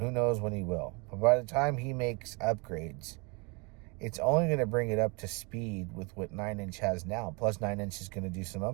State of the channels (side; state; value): left; quieter; 30.8 dB